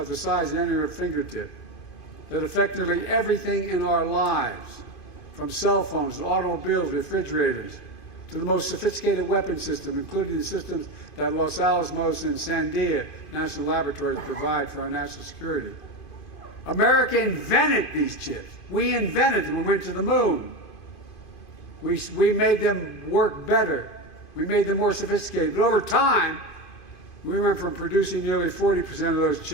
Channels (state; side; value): late; right; 2.5 ms